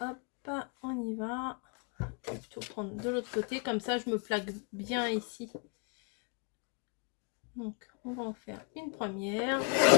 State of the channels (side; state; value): right; quieter; 37.2 dB